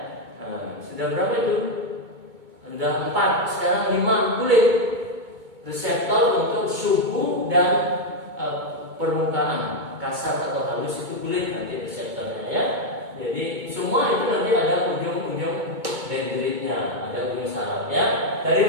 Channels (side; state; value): left; late; 2.2 ms